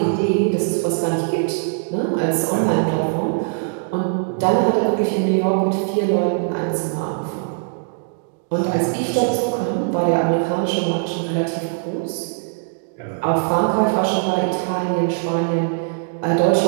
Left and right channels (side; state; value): left; silent; digital silence